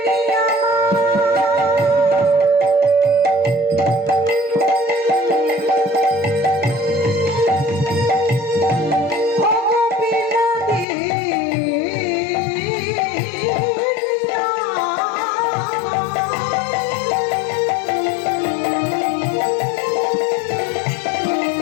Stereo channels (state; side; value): drops out; right; at 10.9 s